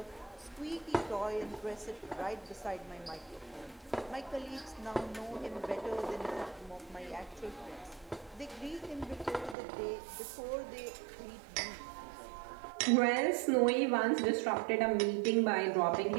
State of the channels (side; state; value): left; drops out; at 9.6 s